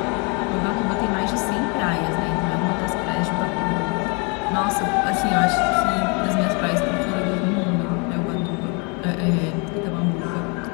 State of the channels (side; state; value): right; quieter; 33.2 dB